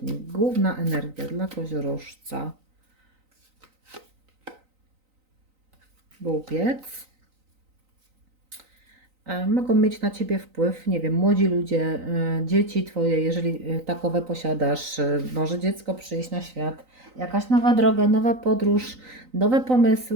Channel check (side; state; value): left; late; 3.9 ms